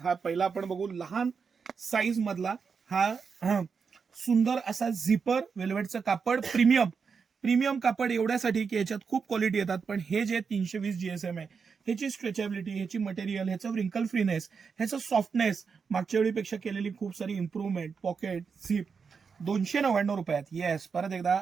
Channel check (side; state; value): left; quieter; 5.7 dB